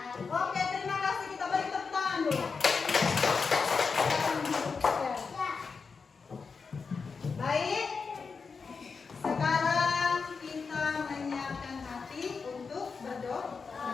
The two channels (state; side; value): quieter; right; 5.1 dB